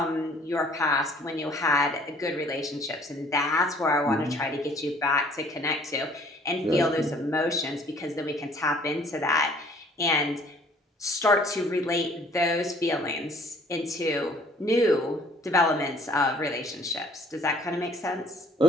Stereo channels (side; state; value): both; normal; correlation 0.57